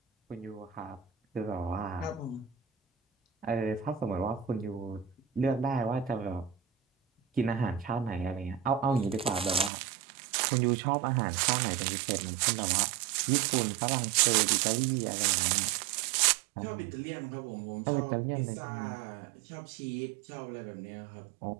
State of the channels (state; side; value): drops out; left; at 9.7 s